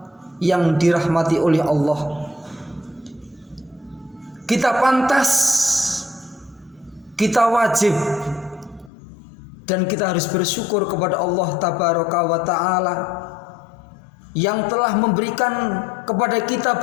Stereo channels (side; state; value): right; drops out; at 8.9 s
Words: yang dirahmati oleh Allah. Kita pantas, kita wajib, dan kita harus bersyukur kepada Allah tabaraka wa ta'ala yang telah memberikan kepada kita